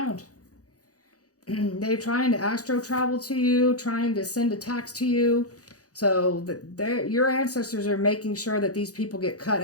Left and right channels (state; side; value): late; right; 0.67 ms